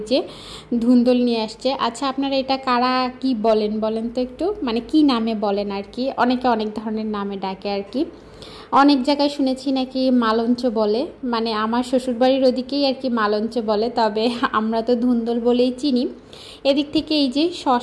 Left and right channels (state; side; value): identical; both; correlation 1.00